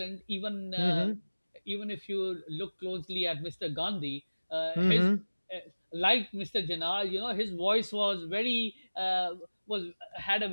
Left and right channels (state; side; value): inverted; both; correlation -1.00